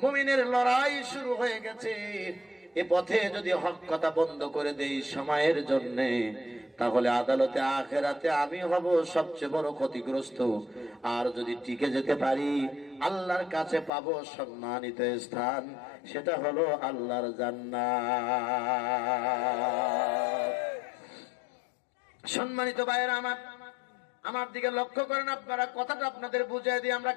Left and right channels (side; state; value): right; drops out; at 13.9 s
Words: মুমিনের লড়াই শুরু হয়ে গেছে। এ পথে যদি হক কথা বন্ধ করে দেই সময়ের জন্য, তাহলে আদালতে আখেরাতে আমি হব সবচেয়ে বড় ক্ষতিগ্রস্ত। আর যদি টিকে যেতে পারি, আল্লাহর কাছে পাবো সম্মানিত স্থান, সেটা হলো আল্লাহর জান্নাত। সম্মানিত ভাইয়েরা আমার দিকে লক্ষ্য করেন আপনারা, কথাটা আপনাদের বুঝিয়ে দিই আমরা